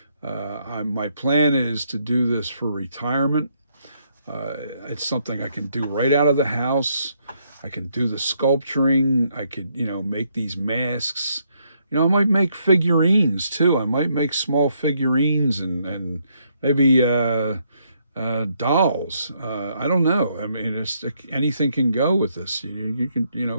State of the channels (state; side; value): inverted; both; correlation -0.73